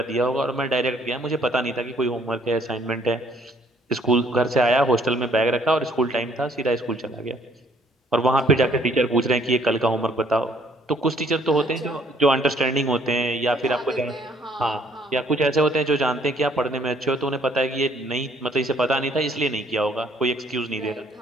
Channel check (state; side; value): normal; both; correlation 0.63